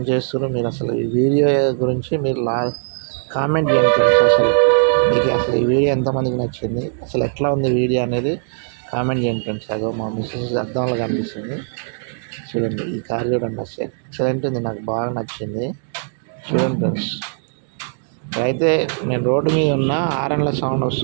చేస్తున్నారు మీరు? అసలు ఈ వీడియో గురించి మీరు కామెంట్ చేయండి ఫ్రెండ్స్. అసలు మీకు అసలు ఈ వీడియో ఎంతమందికి నచ్చింది, అసలు ఎట్లా ఉంది వీడియో అనేది కామెంట్ చేయండి ఫ్రెండ్స్. అదో మా మిస్సెస్ అద్దంలో కనిపిస్తుంది. చూడండి ఈ కార్ చూడండి. అసలు ఎక్సలెంట్ ఉంది, నాకు బాగా నచ్చింది. చూడండి ఫ్రెండ్స్. అయితే నేను రోడ్డు మీద ఉన్న హారన్ల సౌండ్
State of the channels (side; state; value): left; silent; digital silence